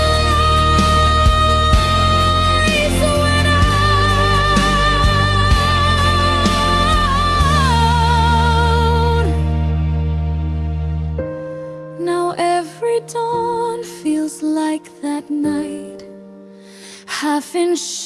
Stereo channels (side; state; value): both; identical; correlation 1.00